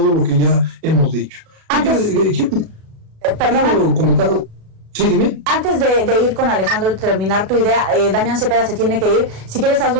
lo que ya hemos dicho. Perdón. Sí, dime. Antes de ir con Alejandro y terminar tu idea, Damián Cepeda se tiene que ir. Si quieres,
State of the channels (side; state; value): left; late; 36 ms